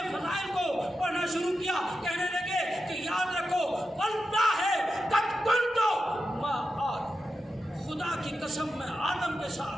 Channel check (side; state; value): both; normal; correlation 0.89